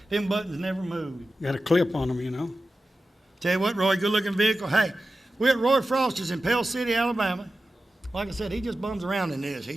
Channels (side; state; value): both; normal; correlation 0.93